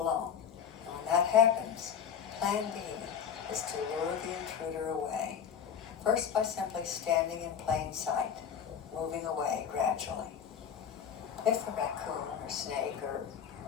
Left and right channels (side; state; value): right; quieter; 7.8 dB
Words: And when that happens, plan B is to lure the intruder away. First by simply standing in plain sight, moving away gradually. If the raccoon or snake or